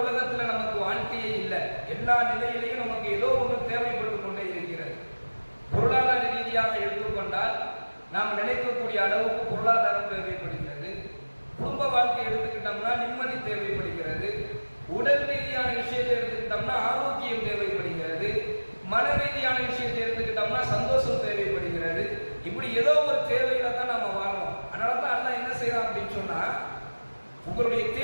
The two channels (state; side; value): inverted; both; correlation -1.00